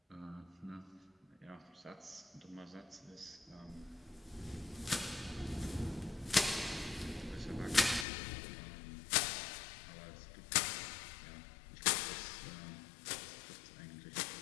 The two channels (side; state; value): right; drops out; at 8.1 s